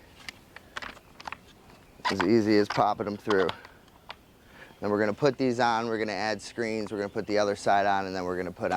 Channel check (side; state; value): both; identical; correlation 1.00